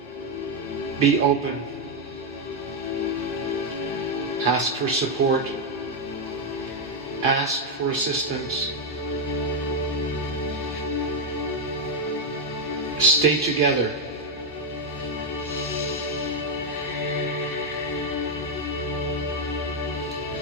Be open. Ask for support. Ask for assistance. Stay together.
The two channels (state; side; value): normal; both; correlation 0.03